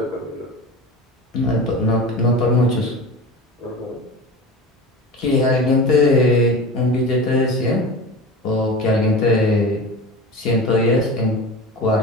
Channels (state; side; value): normal; both; correlation 0.31